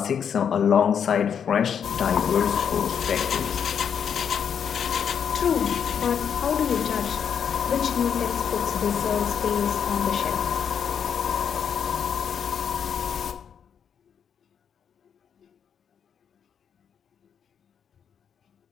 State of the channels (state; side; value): quieter; right; 7.7 dB